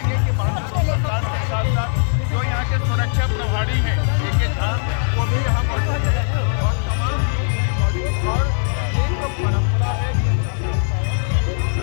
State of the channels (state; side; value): silent; right; digital silence